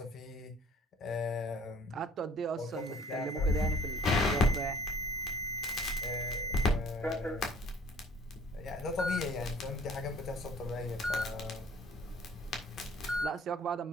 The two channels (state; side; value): normal; both; correlation 0.53